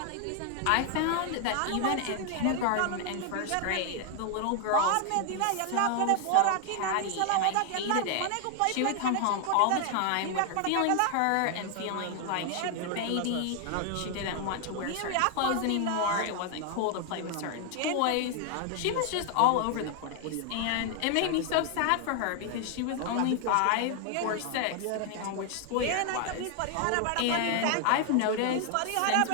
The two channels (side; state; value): both; different; correlation 0.00